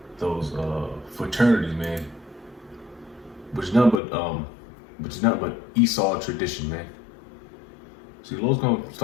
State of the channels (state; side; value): drops out; right; at 4.0 s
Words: fraternities, man. Which is nothing but Esau tradition, man. See, the Lord's gonna